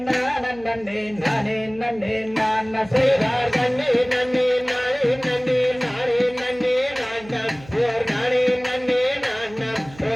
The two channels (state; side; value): noise; right; hum, 20 dB below the sound